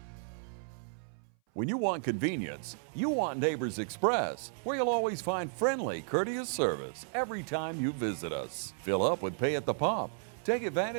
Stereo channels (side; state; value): left; silent; 56 dB below the other